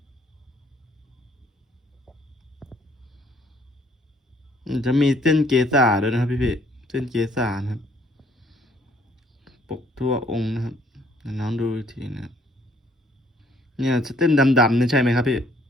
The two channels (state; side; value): normal; both; correlation 0.63